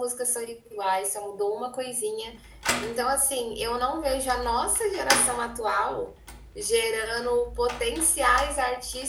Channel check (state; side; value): identical; both; correlation 1.00